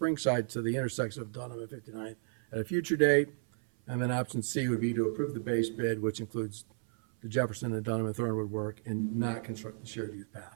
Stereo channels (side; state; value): left; silent; 56 dB below the other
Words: to the intersection of Dunham and 59th at a future date. And then option C would be to approve the base bid, which includes the Jefferson and Dunham and Thornwood work, and not construct the shared use